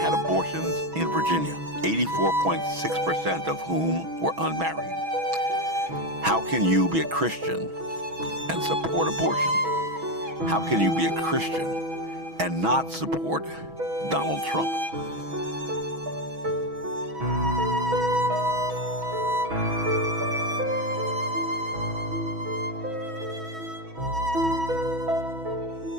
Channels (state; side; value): late; left; 6.2 ms